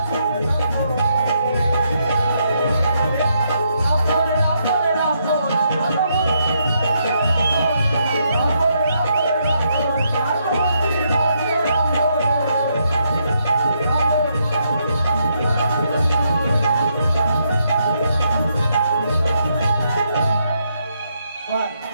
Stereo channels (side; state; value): both; inverted; correlation -0.77